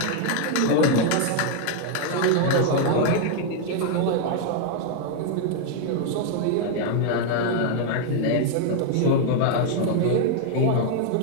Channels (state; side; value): different; both; correlation 0.00